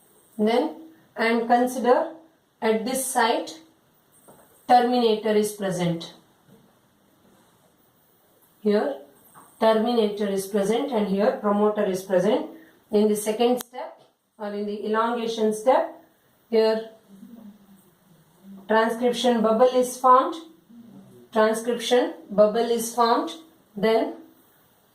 Then, and consider at this site terminator is present. Here terminator is present and here promoter is present. In the second step or in the elongation step, here transcription bubble is formed. Transcription bubble is formed. Then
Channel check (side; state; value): both; identical; correlation 1.00